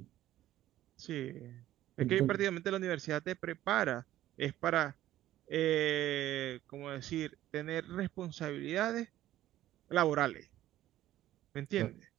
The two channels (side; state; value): left; quieter; 13.9 dB